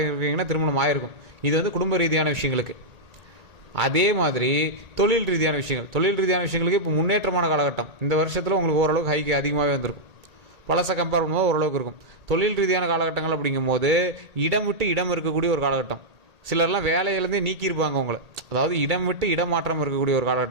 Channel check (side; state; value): left; late; 1.8 ms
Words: இருக்கீங்கன்னா திருமணம் ஆயிருக்கும். இது குடும்ப ரீதியான விஷயங்களுக்கு. அதே மாதிரி தொழில் ரீதியான விஷயங்களுக்கு இப்போ முன்னேற்றமான காலகட்டம். இந்த வருஷத்தில் உங்களுக்கு ஓரளவுக்கு ஹைக்கு அதிகமாகவே வந்திருக்கும். பழசை கம்பேர் பண்ணும்போது ஓரளவுக்கு இருக்கும். தொழில் ரீதியான காலகட்டங்கள் அப்படிங்கும்போது இடம் விட்டு இடம் இருக்கக்கூடிய ஒரு காலகட்டம். சிலர்லாம் வேலையிலேருந்தே நீக்கியிருப்பாங்க உங்களை, அதாவது இடம் விட்டு இடம் மாற்றம் இருக்கக்கூடிய ஒரு